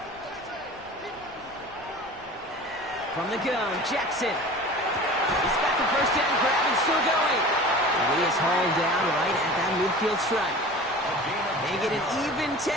From the gun, Jackson. He's got the 1st down grab and still going. And he is hauled down right at that midfield stripe. They get an even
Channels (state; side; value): noise; left; rumble, 25 dB below the sound